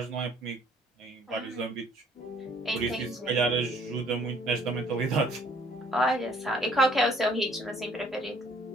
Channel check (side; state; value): both; normal; correlation 0.60